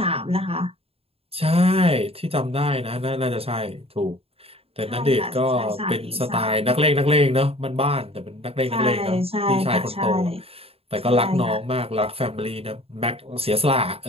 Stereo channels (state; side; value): late; left; 0.28 ms